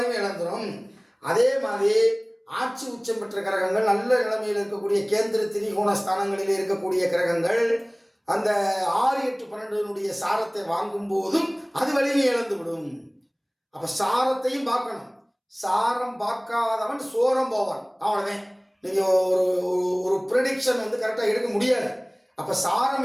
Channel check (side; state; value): both; identical; correlation 1.00